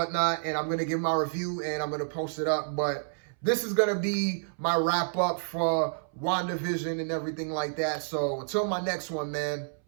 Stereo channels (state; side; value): silent; left; 58 dB below the other